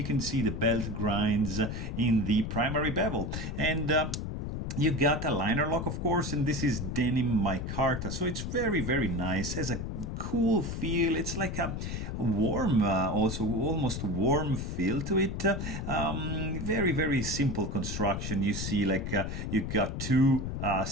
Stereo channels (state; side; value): noise; left; rumble, 4 dB below the sound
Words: can see the belt grinds in the primary bevel. And you got a liner lock, of course, and this is denim micarta, so it's very, very nice. Has a cool feel. It's like a warm, also almost warm feel to it. Very, very simple construction. You see, like you got 2